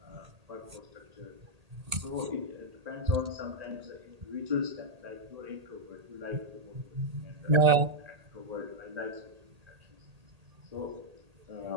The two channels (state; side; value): late; left; 1.8 ms